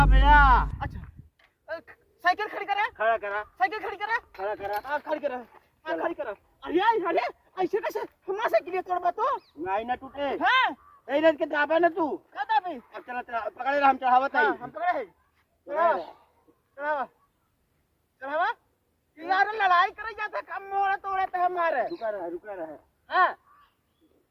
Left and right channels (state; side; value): identical; both; correlation 1.00